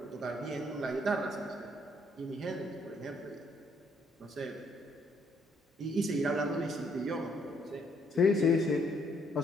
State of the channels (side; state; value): both; normal; correlation 0.69